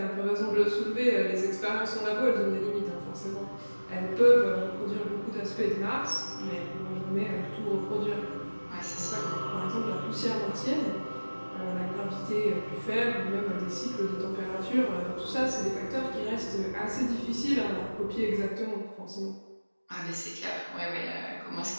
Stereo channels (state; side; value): inverted; both; correlation -1.00